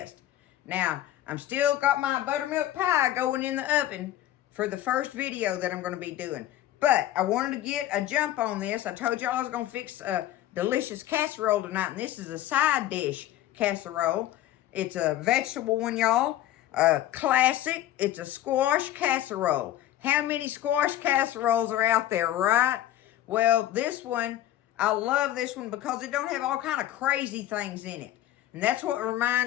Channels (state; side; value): quieter; right; 13.4 dB